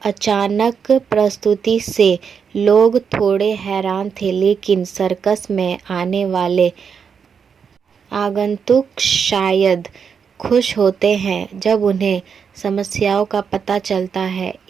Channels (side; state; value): left; quieter; 6.6 dB